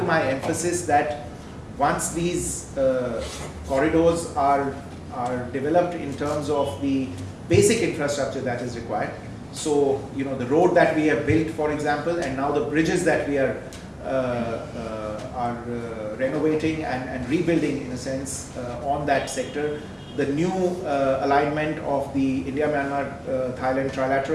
my emphasis that once these corridors are developed in terms of the basic infrastructure that is required, so the road that we have built, for example, and now the bridges that we are renovating and rebuilding in a sense on that sector, the new alignment of the India-Myanmar-Thailand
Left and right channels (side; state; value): both; identical; correlation 1.00